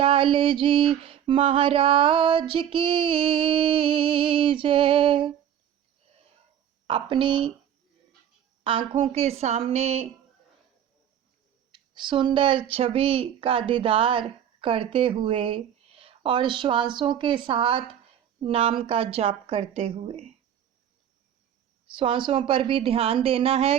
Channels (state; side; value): quieter; left; 9.8 dB